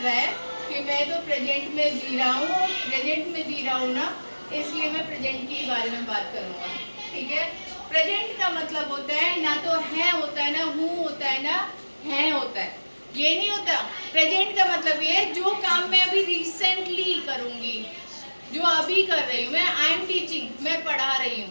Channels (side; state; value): both; inverted; correlation -1.00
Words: है कि मैं तो प्रेजेंट में जी रहा हूँ, प्रेजेंट में जी रहा हूँ ना, इसलिए मैं प्रेजेंट के बारे में बात करूँगा, ठीक है। प्रेजेंट का मतलब होता है ना तो है होता है, ना हूँ होता है, ना है होता है, ये नहीं होता। प्रेजेंट का मतलब ये है जो काम मैं अभी रिसेंटली करूँगी, जो अभी कर रही हूँ मैं, आई एम टीचिंग, मैं पढ़ा रही